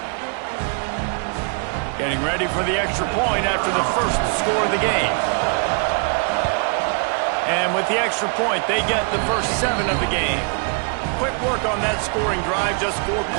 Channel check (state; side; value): quieter; left; 39.8 dB